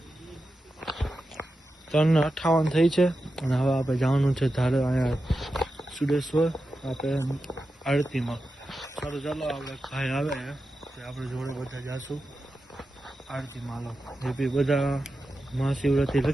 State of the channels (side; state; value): both; normal; correlation 0.91